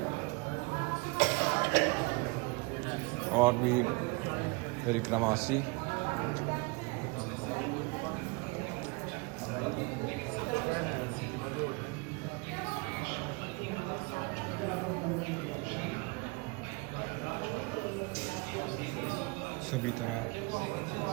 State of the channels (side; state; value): left; quieter; 27.3 dB